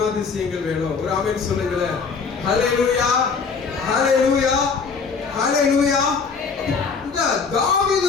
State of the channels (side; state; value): right; quieter; 5.2 dB